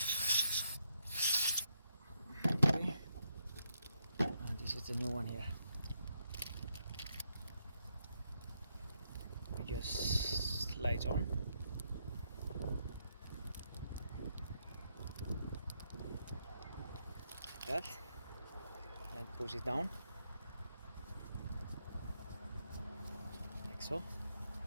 This is the new one here. We just slides on. that, and push it down like so.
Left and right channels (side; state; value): both; inverted; correlation -0.78